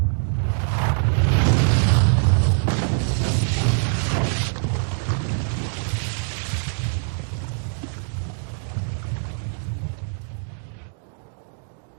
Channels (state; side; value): silent; left; digital silence